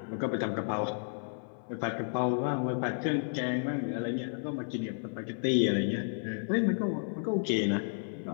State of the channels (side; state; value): right; silent; 55 dB below the other